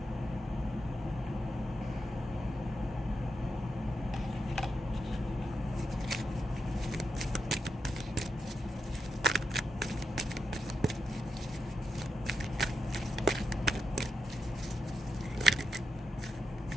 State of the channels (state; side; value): normal; both; correlation 0.86